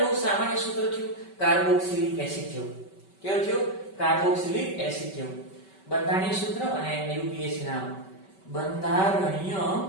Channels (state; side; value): late; right; 5.2 ms